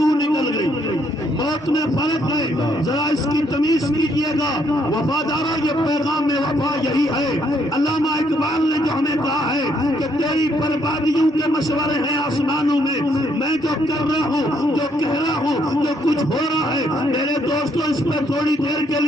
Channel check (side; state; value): both; normal; correlation 0.71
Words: نکل گئی۔ موت میں فرق ہے، ذرا اس کی تمیز کیجئے گا وفادارہ، یہ پیغام وفا یہی ہے۔ علامہ اقبال نے جو ہمیں کہا ہے کہ تیری بربادیوں کے مشورے ہیں آسمانوں میں، میں جو کر رہا ہوں، جو کہہ رہا ہوں، جو کچھ ہو رہا ہے، میرے دوستو اس پہ تھوڑی دیر کے